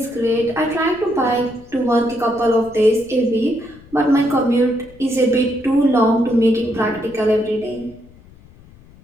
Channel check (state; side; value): noise; left; rumble, 24 dB below the sound